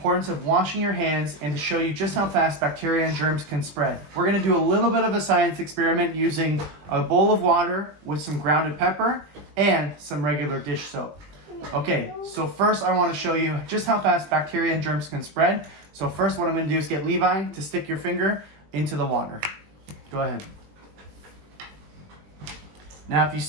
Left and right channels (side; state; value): left; late; 20 ms